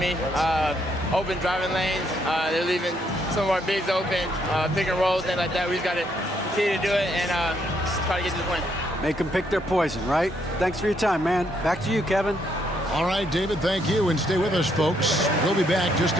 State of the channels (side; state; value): both; normal; correlation 0.73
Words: Open driving lanes. They're leaving some of our bigs open, pick and rolls, things like that. We just got to continue to do it and try to get to the point. Make them pick their poison, right? Thanks for your time, man. Back to you, Kevin. All right, David, thank you. And stay with us, folks. We'll be back just